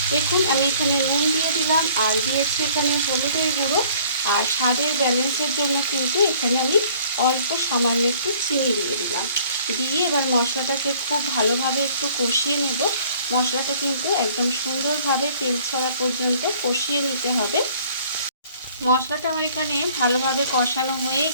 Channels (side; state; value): both; inverted; correlation -0.55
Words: দেখুন আমি এখানে নুন দিয়ে দিলাম আর দিয়েছি এখানে হলুদের গুঁড়ো। আর স্বাদের ব্যালেন্সের জন্য কিন্তু এখানে আমি অল্প সামান্য একটু চিনি দিয়ে দিলাম। দিয়ে এবার মশলাটাকে খুব ভালোভাবে একটু কষিয়ে নেব। মশলাটা কিন্তু একদম সুন্দরভাবে তেল ছাড়া পর্যন্ত কষিয়ে নিতে হবে। মশলাটা আমার এখানে ভালোভাবে কষানো হয়ে